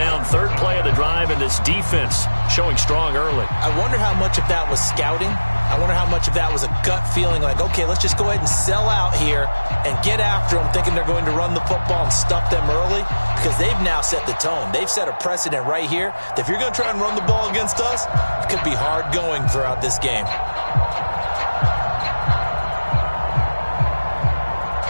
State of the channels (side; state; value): both; inverted; correlation -1.00